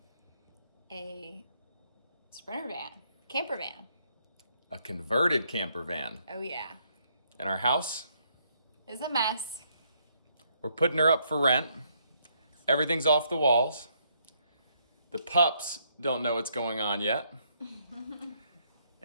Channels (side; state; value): both; inverted; correlation -0.72